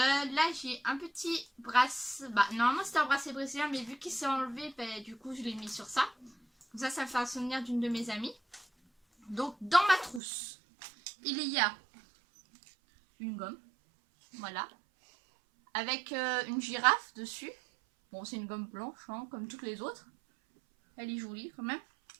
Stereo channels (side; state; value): left; drops out; at 10.2 s